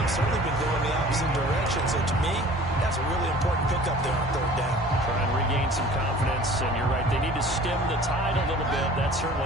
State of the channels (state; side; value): normal; both; correlation 0.47